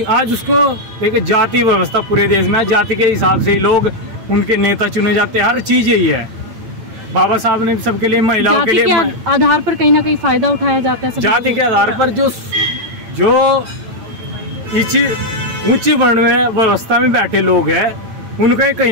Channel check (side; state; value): left; late; 8.9 ms